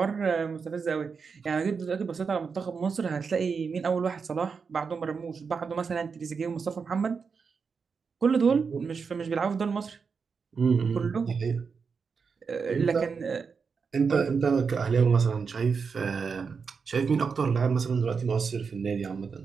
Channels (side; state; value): left; quieter; 5.5 dB